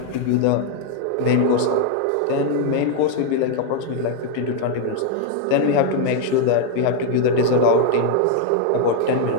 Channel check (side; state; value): both; different; correlation 0.00